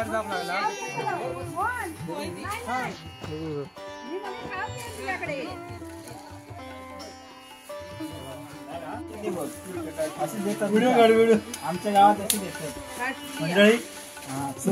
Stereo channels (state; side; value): identical; both; correlation 1.00